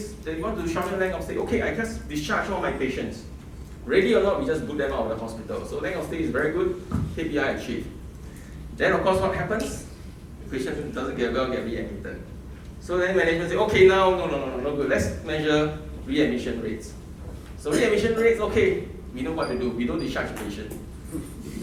shorten length of stay. Okay, I just discharge all my patients. Ready or not, we just boot them out of the hospital. So length of stay is very good, KPI achieved. Then of course what happens? The patient doesn't get well, get readmitted. So then management say, okay, now, no good. Let's measure readmission rates. So readmission rates, okay, we know what to do. We don't discharge the patient. We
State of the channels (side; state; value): both; identical; correlation 1.00